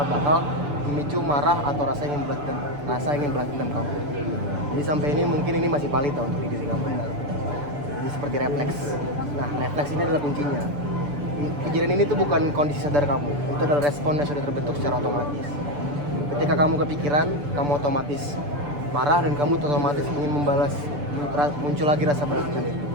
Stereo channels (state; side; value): late; left; 6.8 ms